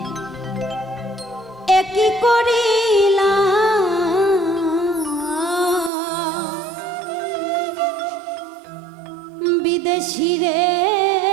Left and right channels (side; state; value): left; drops out; at 5.9 s